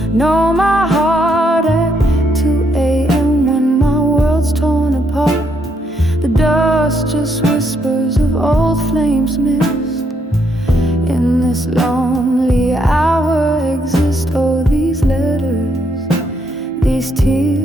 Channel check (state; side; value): normal; both; correlation 0.75